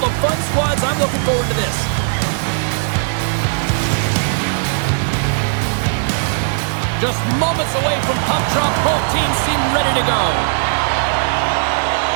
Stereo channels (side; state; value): left; silent; digital silence